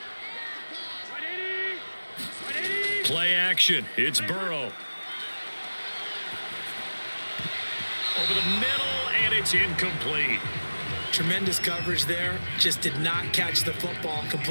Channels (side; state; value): both; inverted; correlation -1.00